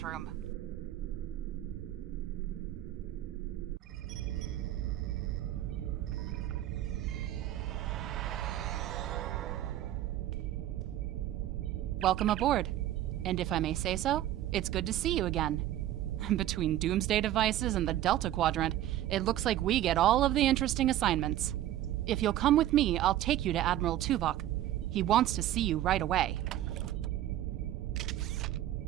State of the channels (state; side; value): quieter; left; 13.1 dB